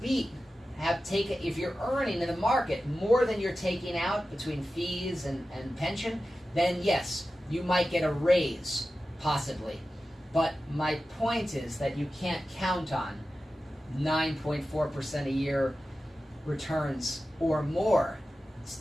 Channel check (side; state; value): both; normal; correlation 0.94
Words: if you're earning in the market more than you're taking out between fees and pension, then yes, you might get a raise, possibly. But my point is that you can't count on 9.4% a year returns or more